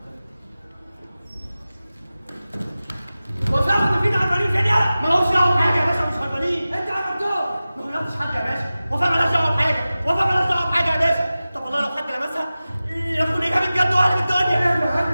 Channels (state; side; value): inverted; both; correlation -0.96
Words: وفاء وتفيد هربانين كده يلا. مالهمش دعوه بحاجه يا باشا، مش هربانين. انت عملتهم. ما غيرتش حد يا باشا. وفاء مالهاش دعوه بحاجه، وفاء مالهاش دعوه بحاجه يا باشا. طب والله لو حد لمسها يكون اجابه بجد وقلب الدنيا.